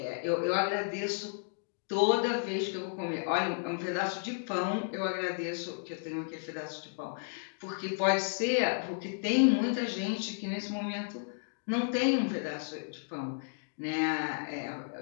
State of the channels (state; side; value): silent; right; digital silence